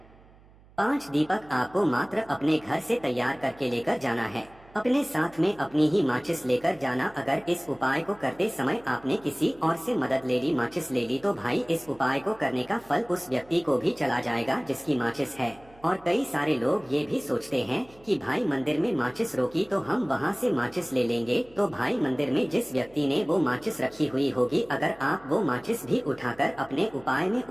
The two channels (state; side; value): noise; right; hum, 26 dB below the sound